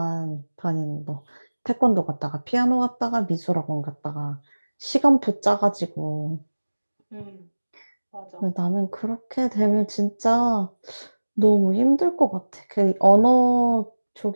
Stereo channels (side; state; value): both; inverted; correlation -1.00